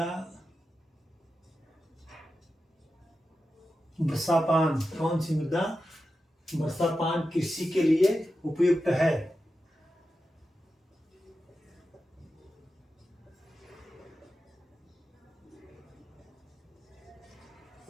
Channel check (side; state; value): both; normal; correlation 0.91